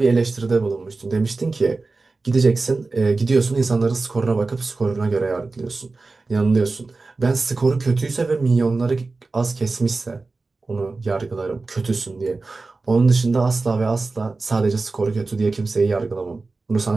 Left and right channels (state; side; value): quieter; left; 3.7 dB